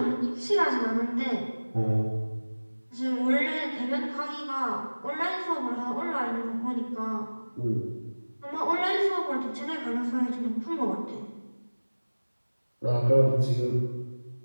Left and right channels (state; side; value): inverted; both; correlation -1.00